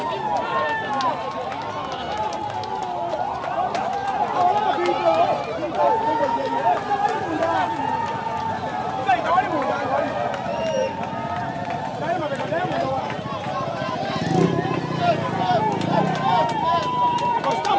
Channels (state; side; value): identical; both; correlation 1.00